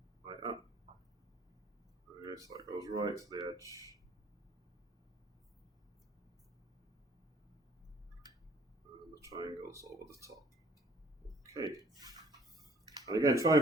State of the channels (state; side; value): normal; both; correlation 0.58